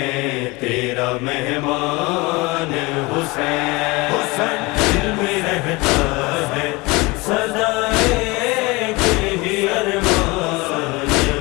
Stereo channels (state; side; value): quieter; right; 24.1 dB